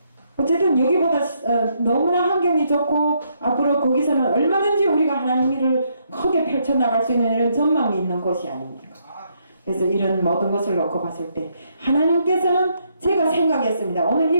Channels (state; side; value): inverted; both; correlation -0.74